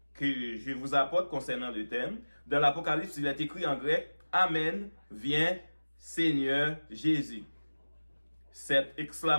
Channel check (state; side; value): inverted; both; correlation -1.00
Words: que je vous apporte concernant le thème. Dans l'Apocalypse, il est écrit en grec Amen, viens Seigneur Jésus. Cette